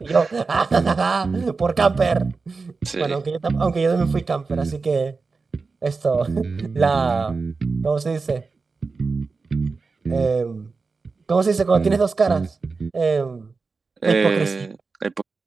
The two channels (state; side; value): quieter; left; 4.3 dB